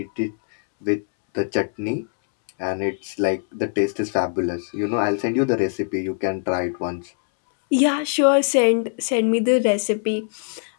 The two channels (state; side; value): silent; right; 64 dB below the other